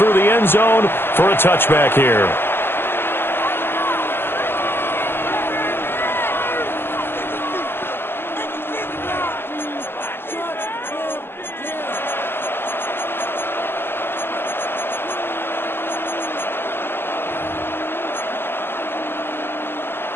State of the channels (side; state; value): right; late; 0.11 ms